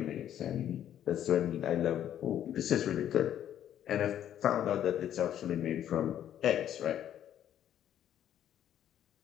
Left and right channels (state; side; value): quieter; right; 10.7 dB